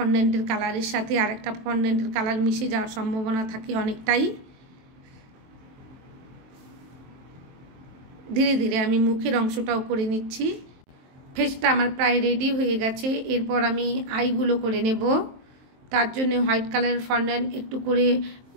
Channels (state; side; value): late; left; 23 ms